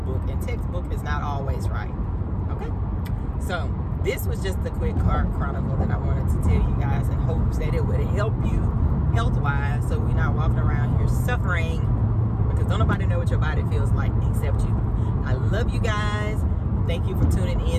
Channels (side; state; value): both; identical; correlation 1.00